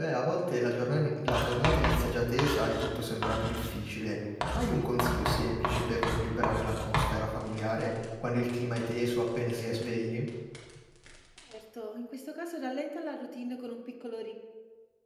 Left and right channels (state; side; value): identical; both; correlation 1.00